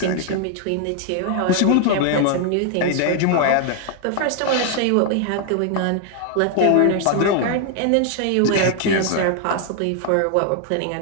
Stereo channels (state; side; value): different; both; correlation 0.00